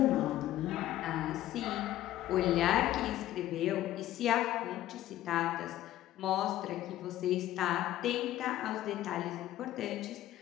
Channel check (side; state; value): right; quieter; 13.9 dB